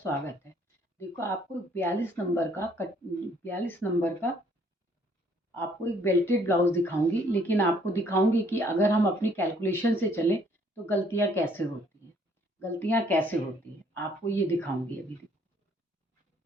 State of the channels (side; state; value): both; normal; correlation 0.63